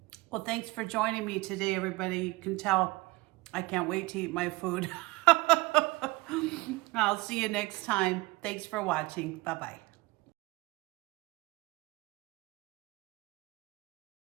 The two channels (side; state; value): left; quieter; 22.4 dB